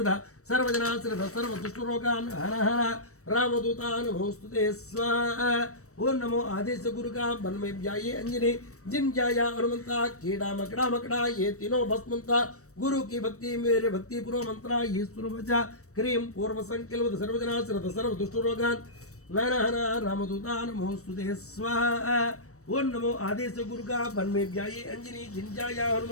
सर्वजना श्रद्धा सर्व दुष्ट रोगान हर हर रामदूता नमोस्तुते स्वाहा। ओम नमो आदेश गुरु का बन में व्याये अंजनी जिन जाया हनुमंता कीड़ा मकड़ा मकड़ा ये तीनों भस्मंता गुरु की भक्ति मेरे भक्ति पूर्व मंत्रा ये सुरवचा क्रीम पूर्व संकल्प सर्वजना श्रद्धा सर्व दुष्ट रोगान हर हर रामदूता नमोस्तुते स्वाहा। ओम नमो आदेश गुरु का बन में व्याये अंजनी जिन जाया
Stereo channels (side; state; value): right; late; 0.65 ms